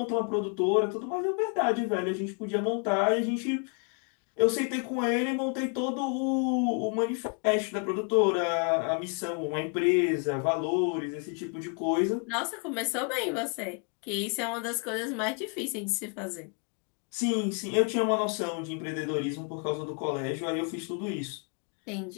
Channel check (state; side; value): quieter; right; 39.9 dB